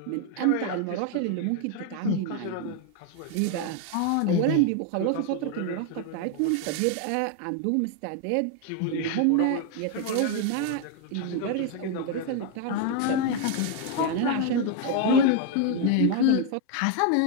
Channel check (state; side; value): different; both; correlation 0.01